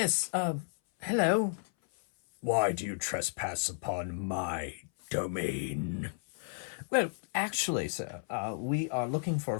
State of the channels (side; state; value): right; silent; 56 dB below the other